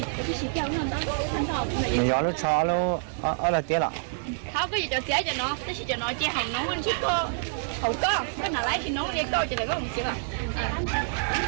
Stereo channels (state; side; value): silent; left; 56 dB below the other